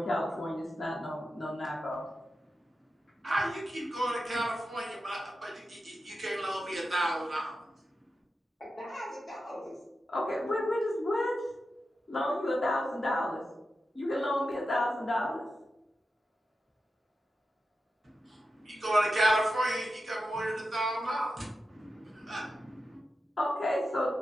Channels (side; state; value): both; normal; correlation 0.90